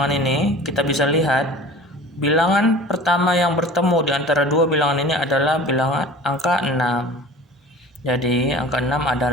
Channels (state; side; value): normal; both; correlation 0.41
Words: ini, kita bisa lihat bilangan pertama yang bertemu di antara dua bilangan ini adalah bilangan angka 6. Jadi angka 6